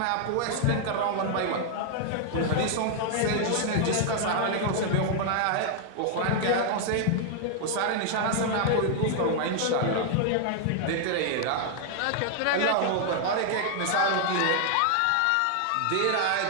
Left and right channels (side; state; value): both; different; correlation 0.00